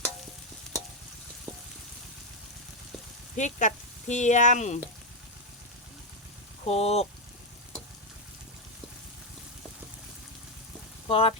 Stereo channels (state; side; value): normal; both; correlation 0.04